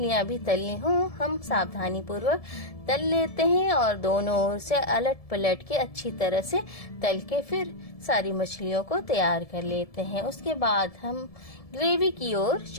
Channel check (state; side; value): late; right; 1.7 ms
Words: भी तलनी हो हम सावधानी पूर्वक तल लेते हैं और दोनों ओर से अलट पलट के अच्छी तरह से तल के फिर सारी मछलियों को तैयार कर लेते हैं। उसके बाद हम ग्रेवी की ओर